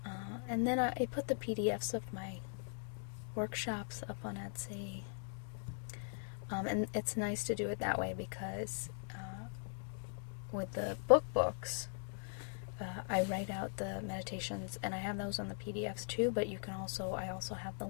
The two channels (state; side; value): silent; right; digital silence